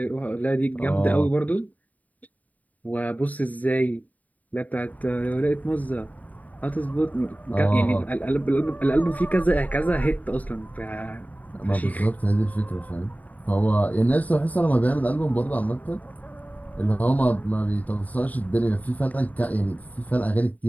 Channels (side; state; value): right; late; 0.074 ms